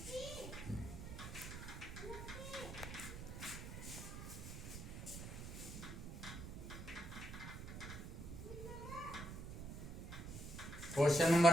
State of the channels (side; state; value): right; noise; rumble, 8 dB below the sound